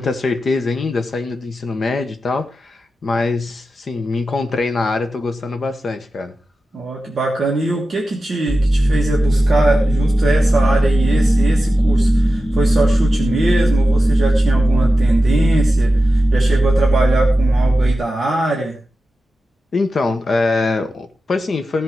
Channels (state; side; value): normal; both; correlation 0.92